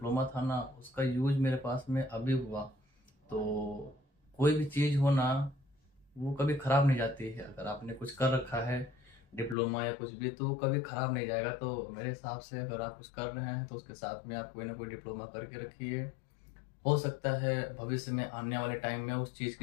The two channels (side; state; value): right; drops out; at 9.6 s